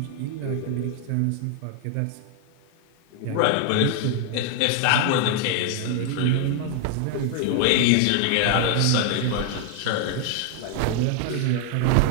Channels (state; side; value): different; both; correlation 0.00